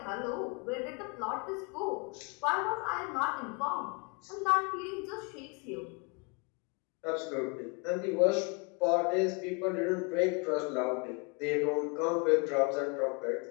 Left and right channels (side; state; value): right; quieter; 33.3 dB